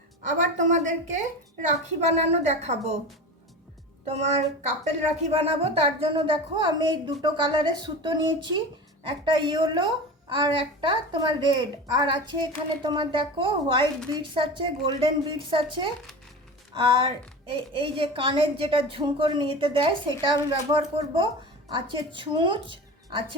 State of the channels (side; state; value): both; normal; correlation 0.30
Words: আবার তোমাদেরকে রাখি বানানো দেখাবো। তোমার কাপেল রাখি বানাবো, তার জন্য দেখো আমি এই দুটো কালারের সুতো নিয়েছি, একটা ইয়েলো আর একটা তোমার রেড, আর আছে এখানে তোমার দেখো হোয়াইট বিডস আছে, গোল্ডেন বিডস আছে, আর এই যে কানের যেটা ঝুমকোর নিতে দেয় সেটা আমি ব্যবহার করব। আছে ছুঁচ,